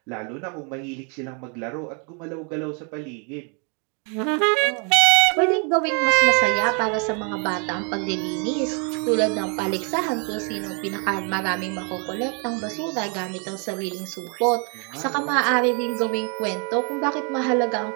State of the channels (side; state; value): left; quieter; 36.7 dB